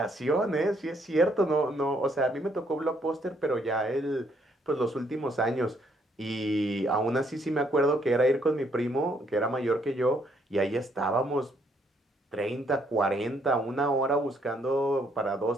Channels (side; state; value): both; normal; correlation 0.70